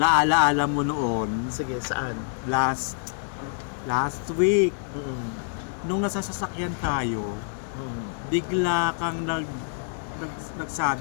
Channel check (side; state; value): right; silent; digital silence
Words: mo noon, Sige, saan? last week, Mm. nung nasa sasakyan tayo, Mm. bigla kang